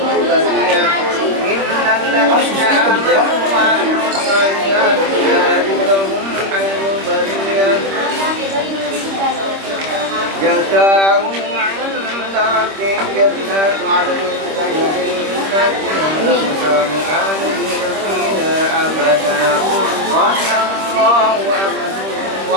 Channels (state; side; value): late; left; 26 ms